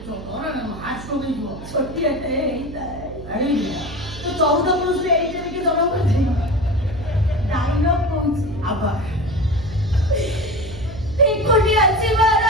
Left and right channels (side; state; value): right; noise; hum, 13 dB below the sound